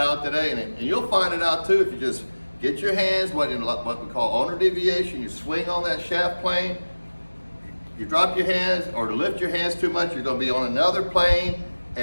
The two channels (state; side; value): inverted; both; correlation -1.00